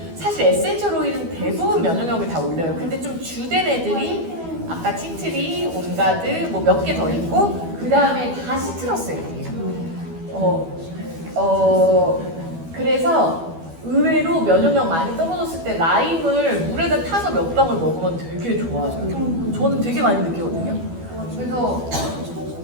사실 에센셜 오일은 대부분 면역력을 다 올려요. 근데 좀 주된 애들이 아까 티트리, 온가드 뭐 몇 개 더 있고 그 다음에 다 시트러스 애들이에요. 그래서 의외로 면역력 많이 떨어졌을 때 라임을 물에다 타서 몇 방울 먹으면 되게 좋아져요. 저는 되게 많이 느끼거든요. 그래서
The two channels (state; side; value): late; left; 12 ms